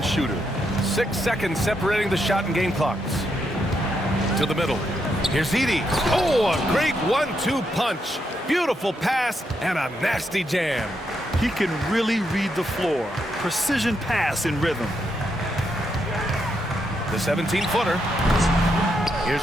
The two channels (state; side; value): normal; both; correlation 0.80